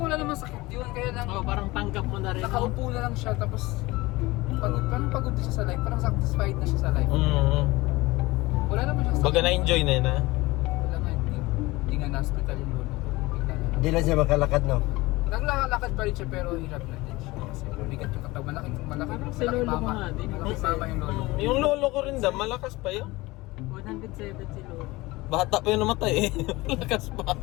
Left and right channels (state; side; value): quieter; right; 21.0 dB